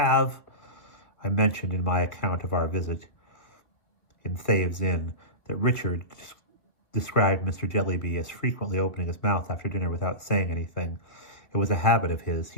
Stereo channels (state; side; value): late; right; 2.1 ms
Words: I mentioned in my account of our visit in Thaves Inn that Richard described Mr. Jellyby as frequently opening his mouth after dinner without saying anything. It was a habit of his.